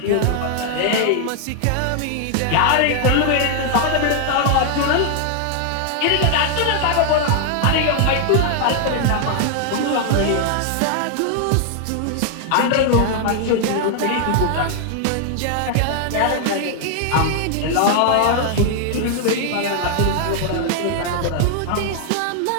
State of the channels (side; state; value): both; different; correlation 0.00